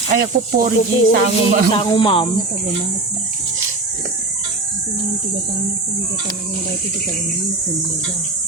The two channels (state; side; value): quieter; left; 3.2 dB